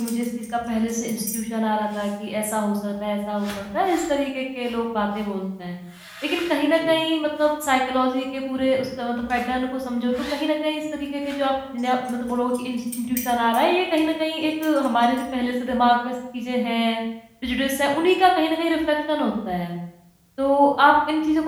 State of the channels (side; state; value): both; identical; correlation 1.00